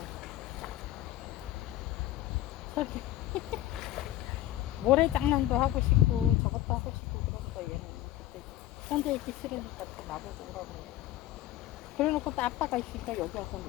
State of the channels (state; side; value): quieter; right; 14.2 dB